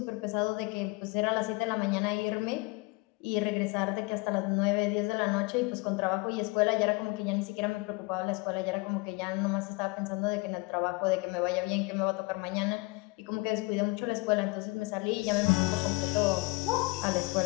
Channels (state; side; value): quieter; right; 26.0 dB